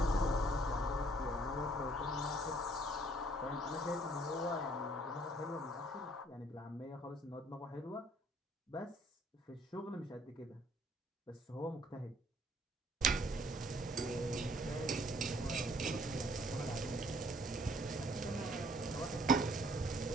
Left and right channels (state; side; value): normal; both; correlation 0.61